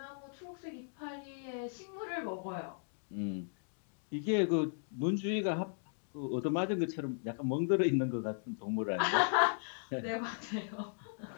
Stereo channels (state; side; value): silent; right; digital silence